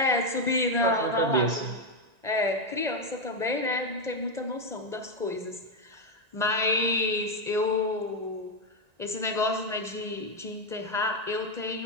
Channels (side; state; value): left; late; 1.9 ms